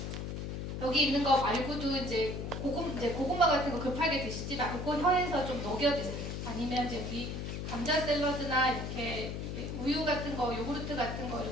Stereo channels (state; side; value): noise; left; hum, 5 dB below the sound